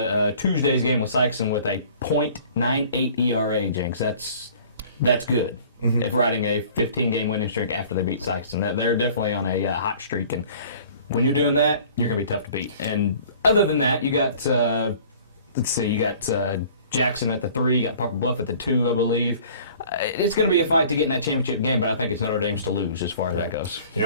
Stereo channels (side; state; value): both; inverted; correlation -0.50